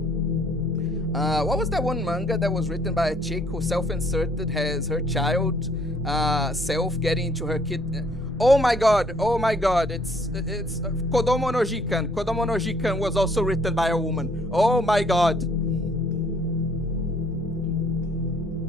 What was that one manga that was written by a chick who self-inserted has her child self getting into her kid? Oh my god, it's Kodomo no Jikan. Kodomo no Jikan was also written by a woman. Oh my god.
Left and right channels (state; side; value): normal; both; correlation 0.62